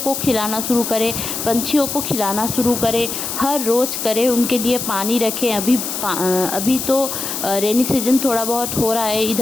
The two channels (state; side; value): noise; left; hiss, 4 dB below the sound